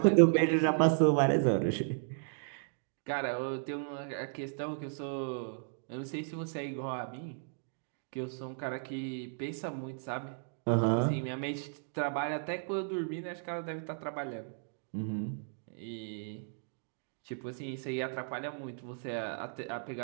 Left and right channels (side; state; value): left; silent; digital silence